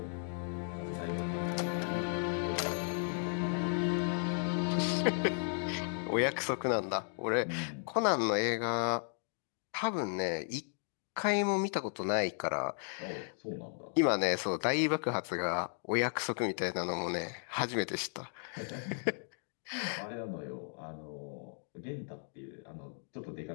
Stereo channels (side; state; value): right; silent; 54 dB below the other